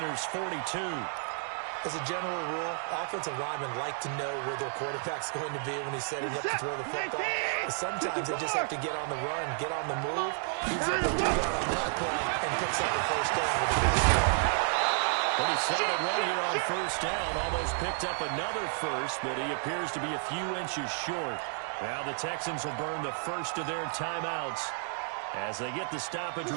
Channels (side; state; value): left; silent; 57 dB below the other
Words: 42. As a general rule, offensive linemen like to know where their quarterback's going to be when he's setting up to throw the football. But sometimes they just have to get on the run, get on the move. He's able to do that on that play and picks up the first down with a big step. Pretty solid run here on first down. Almost picked up another first, but he appears to be a few inches short. Now the Texans will burn the first of their timeouts as they get the stoppage